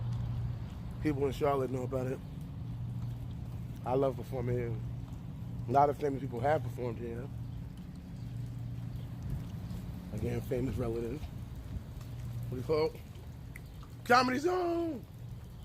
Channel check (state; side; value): identical; both; correlation 1.00